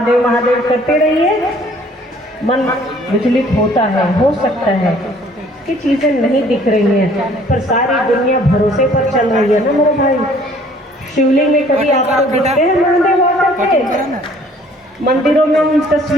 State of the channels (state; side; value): normal; both; correlation 0.57